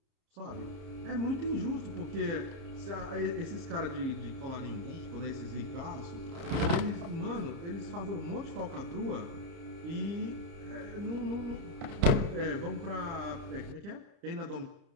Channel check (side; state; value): left; late; 30 ms